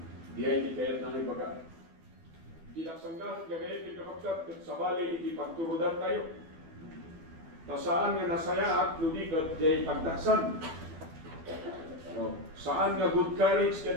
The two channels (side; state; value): left; late; 12 ms